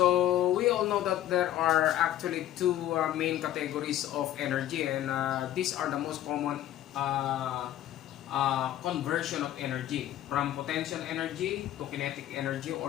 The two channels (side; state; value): right; quieter; 12.6 dB